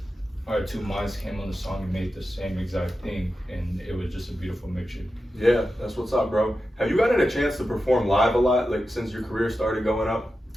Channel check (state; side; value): normal; both; correlation 0.91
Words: our two minds came on the song and made the same exact thing, and it was just a beautiful mixture. Yeah, that's what's up, bro. Have you gotten a chance to perform live a lot, like since your career started going up?